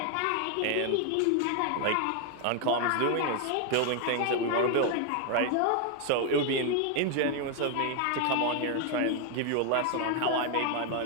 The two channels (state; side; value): different; both; correlation 0.01